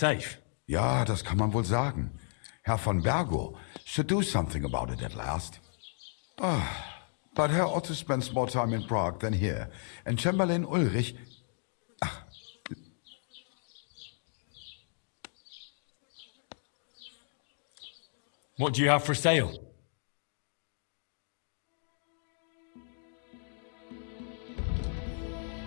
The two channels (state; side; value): silent; right; digital silence